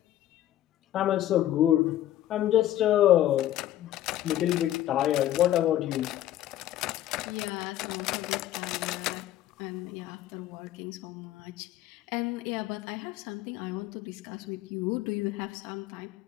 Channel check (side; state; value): right; quieter; 13.1 dB